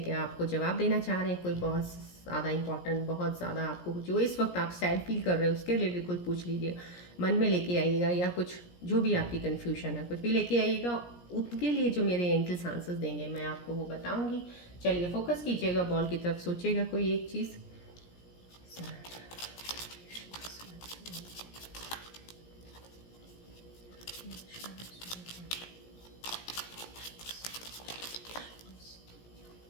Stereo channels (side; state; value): right; late; 17 ms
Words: आपको जवाब देना चाह रहे हैं। कोई बहुत ज़्यादा इंपॉर्टेंट, बहुत ज़्यादा आपको जो इस वक्त आप सैड फील कर रहे हो उसके रिलेटेड कुछ पूछ लीजिए, मन में लेके आइएगा, या कुछ जो भी आपकी कन्फ्यूजन है कुछ भी लेके आइएगा, उनके लिए जो मेरे एंजल्स आंसर्स देंगे मैं आपको वो बताऊंगी। चलिए फोकस कीजिएगा, बॉल की तरफ सोचिएगा कोई एक चीज़।